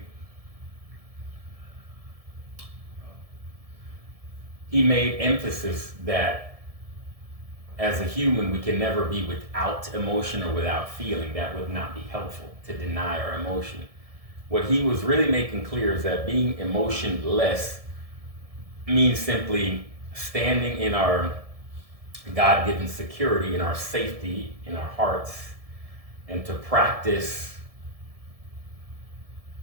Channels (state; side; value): late; left; 1.7 ms